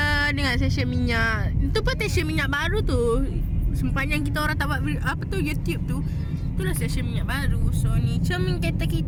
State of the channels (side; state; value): both; identical; correlation 1.00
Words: dengan stesen minyak. Itu pun stesen minyak baru tu. Sepanjang kita orang tak buat apa tu YouTube tu. Itulah stesen minyak baru. So ni cermin kereta